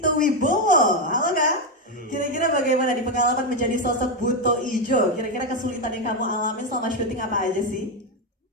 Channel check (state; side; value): normal; both; correlation 0.06